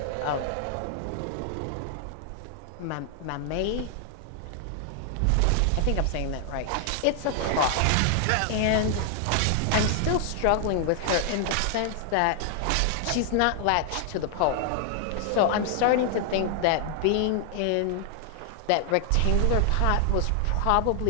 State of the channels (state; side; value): different; both; correlation 0.00